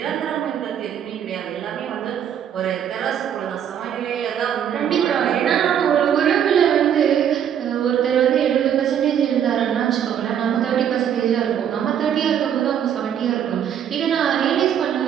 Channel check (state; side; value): quieter; left; 9.1 dB